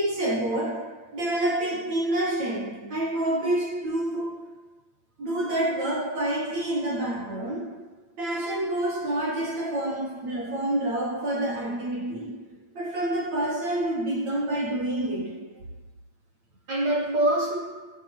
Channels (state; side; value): late; left; 8.8 ms